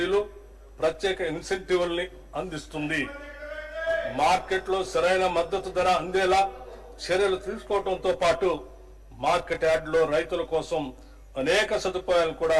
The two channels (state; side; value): identical; both; correlation 1.00